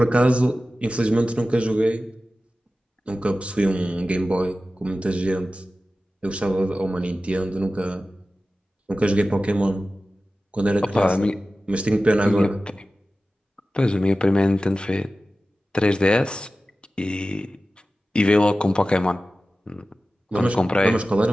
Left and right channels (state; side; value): normal; both; correlation 0.95